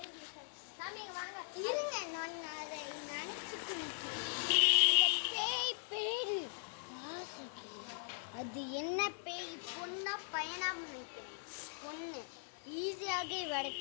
அது என்ன பேய்? பொண்ணா பையனா நினைக்கிறேன். பொண்ணு ஈஸியாக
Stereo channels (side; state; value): right; silent; digital silence